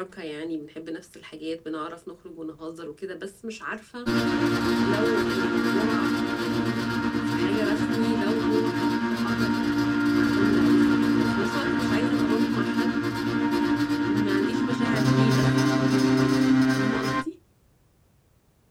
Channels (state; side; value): identical; both; correlation 1.00